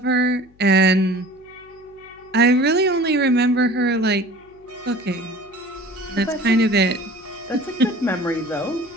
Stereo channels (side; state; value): left; noise; hum, 29 dB below the sound